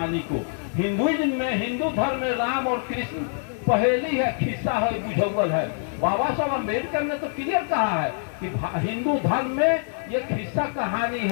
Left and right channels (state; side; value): silent; right; 56 dB below the other